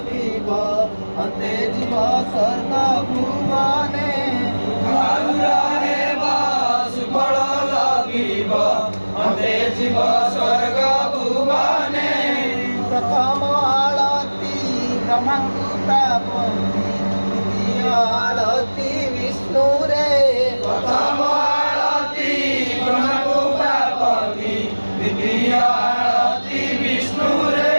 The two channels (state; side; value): inverted; both; correlation -1.00